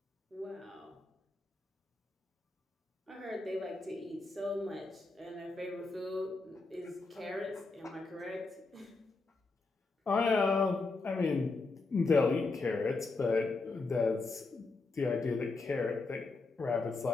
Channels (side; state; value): right; quieter; 3.7 dB